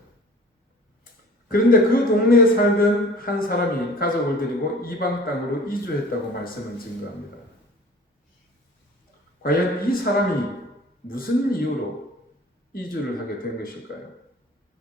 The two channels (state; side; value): normal; both; correlation 0.46